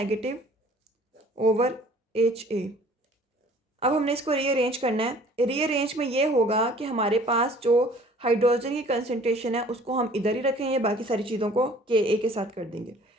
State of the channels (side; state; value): both; normal; correlation 0.52